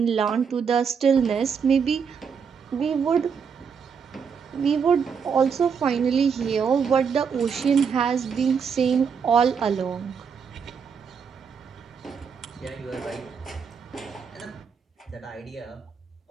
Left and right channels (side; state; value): left; quieter; 6.5 dB